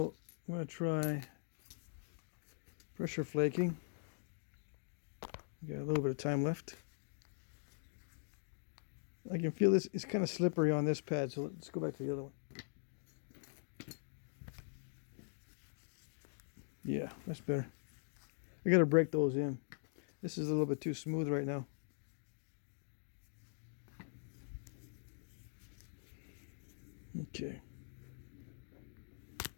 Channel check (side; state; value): right; silent; digital silence